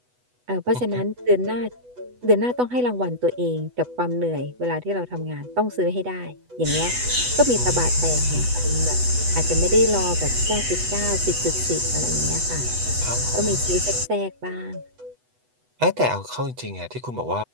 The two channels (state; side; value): late; left; 8.1 ms